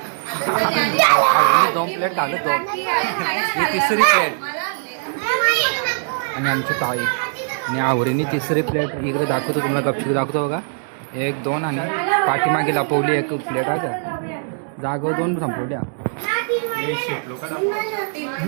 आवडीने 2 प्लेट घालत 2. ही 3री प्लेट. आणि आमची ताई आणि आवडीने 3री प्लेट इकडे दाखवतो तुम्हाला. गपचूप दाखवतो बघा. 1 2 आणि पाठीमागे लपवली 1 प्लेट आहे का. जागो 2 संपवल्या.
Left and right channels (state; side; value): silent; left; digital silence